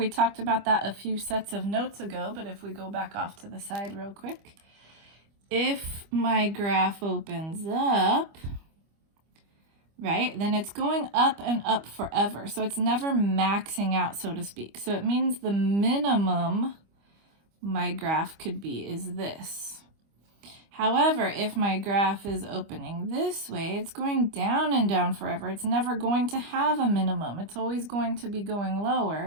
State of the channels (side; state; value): left; late; 25 ms